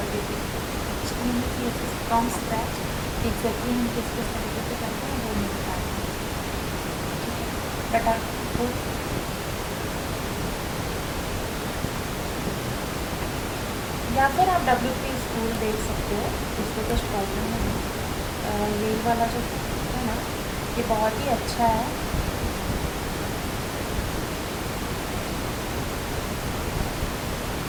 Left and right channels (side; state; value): both; identical; correlation 1.00